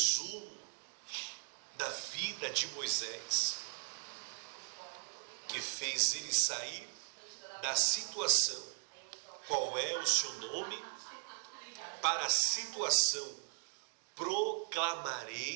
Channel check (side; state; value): left; silent; digital silence